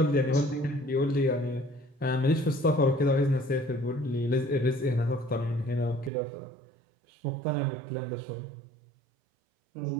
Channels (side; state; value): left; drops out; at 6.1 s